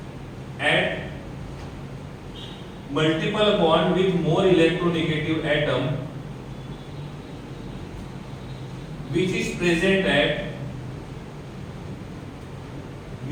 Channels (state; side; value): identical; both; correlation 1.00